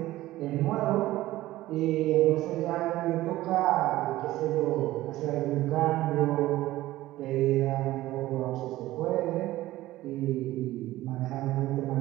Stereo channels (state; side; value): quieter; left; 16.2 dB